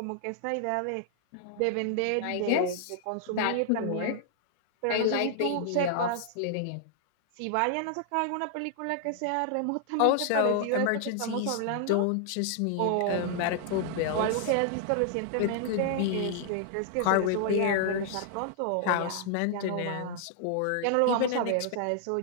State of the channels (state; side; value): different; both; correlation -0.01